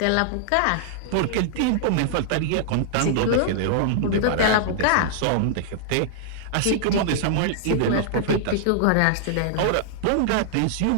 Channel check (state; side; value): different; both; correlation -0.01